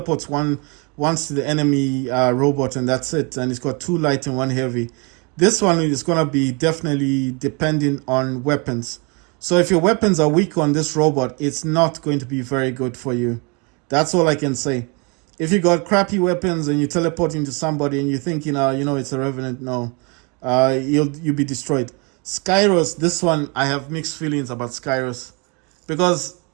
once to the enemy robot, and that's it. And he's got 2 light and 1 heavy. This one is going to be definitely depending on weapons. So if your weapons are weak on this robot, it's not going to be very good for you. That's all I can say. If you got crappy weapons and you teleport into somebody and you're thinking, it's a Revenant, no. You'll be destroyed. Skyros, this one, I have mixed feelings about Skyros. Because,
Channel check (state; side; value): quieter; left; 31.6 dB